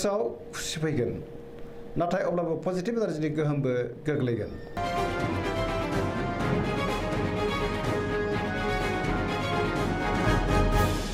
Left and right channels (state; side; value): identical; both; correlation 1.00